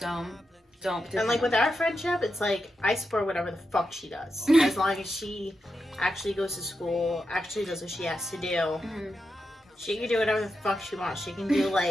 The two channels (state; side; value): normal; both; correlation 0.87